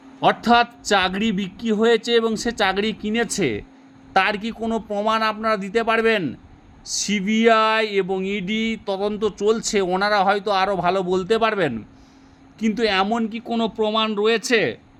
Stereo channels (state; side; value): identical; both; correlation 1.00